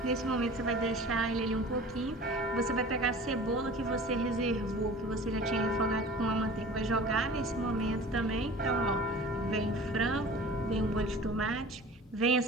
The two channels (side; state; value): both; normal; correlation 0.41